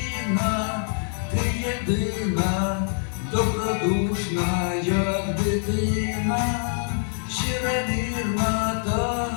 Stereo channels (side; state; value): right; silent; 58 dB below the other